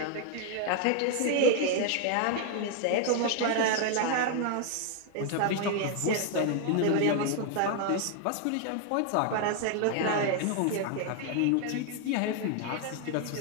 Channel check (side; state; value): both; different; correlation 0.00